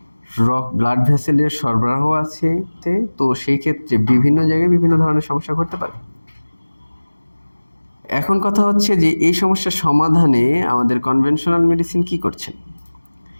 ব্লাড ভেসেলের সরবরাহ আছে, তো সেই ক্ষেত্রে বিভিন্ন জায়গায় বিভিন্ন ধরনের সমস্যা ঘটতে পারে। এখন কথা হচ্ছে যে এই সমস্যার সমাধানে আমাদের কনভেনশনাল মেডিসিন কি করছেন?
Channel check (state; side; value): inverted; both; correlation -1.00